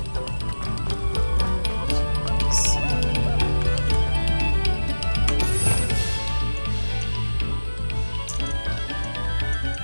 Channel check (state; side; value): inverted; both; correlation -1.00